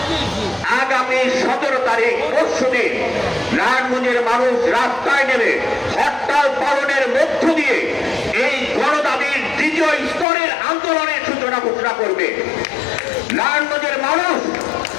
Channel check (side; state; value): right; drops out; at 10.2 s